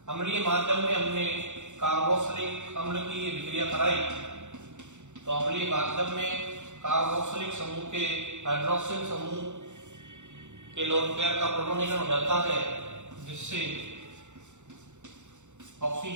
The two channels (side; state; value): left; late; 0.84 ms